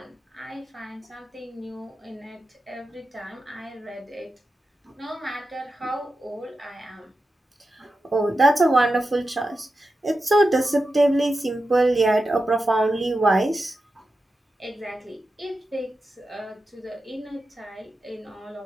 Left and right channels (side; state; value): both; normal; correlation 0.90